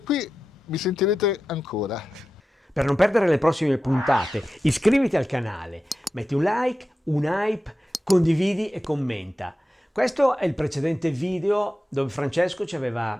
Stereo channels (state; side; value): normal; both; correlation 0.92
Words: mi sentirete ancora. Per non perdere le prossime puntate, iscriviti al canale, metti un like, un hype, condividi e commenta. Questo è il precedente video dove Francesco ci